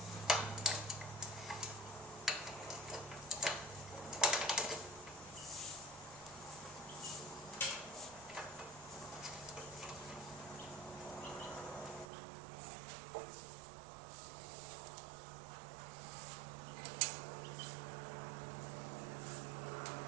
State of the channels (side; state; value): left; drops out; at 12.1 s